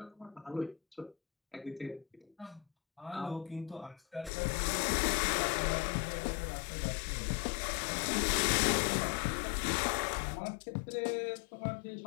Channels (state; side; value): drops out; right; at 4.3 s